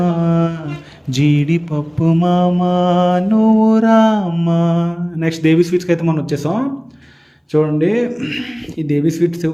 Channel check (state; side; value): identical; both; correlation 1.00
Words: జీడిపప్పు మామ నువ్వు రామ. నెక్స్ట్ దేవి స్వీట్స్కి అయితే మనం వచ్చేసాం. చూడండి ఈ దేవి స్వీట్స్